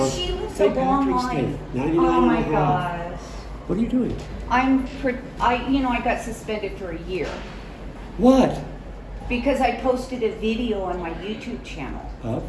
she lived a St. long Patrick's Day, life. 99 Oh my and a half. gosh. What are you doing? I got suspended for a year What? because I posted a video on my YouTube channel. Up?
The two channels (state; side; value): identical; both; correlation 1.00